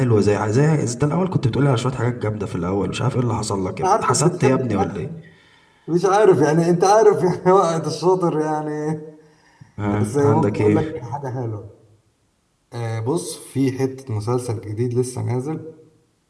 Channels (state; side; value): identical; both; correlation 1.00